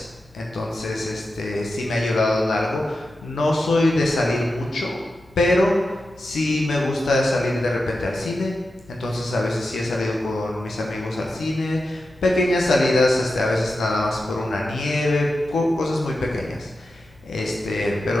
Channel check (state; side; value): normal; both; correlation 0.91